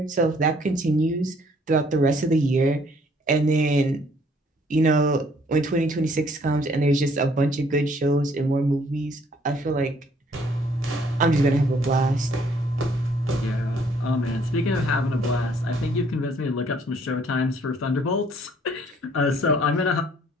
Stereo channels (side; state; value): both; normal; correlation 0.62